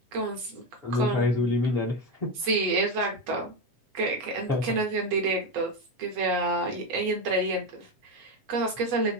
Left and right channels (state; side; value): late; left; 8.1 ms